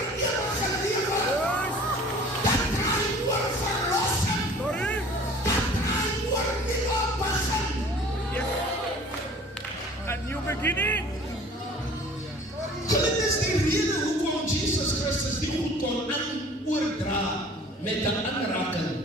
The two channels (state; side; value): normal; both; correlation 0.48